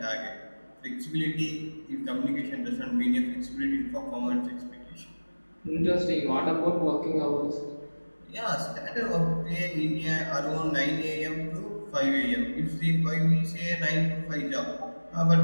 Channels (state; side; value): inverted; both; correlation -1.00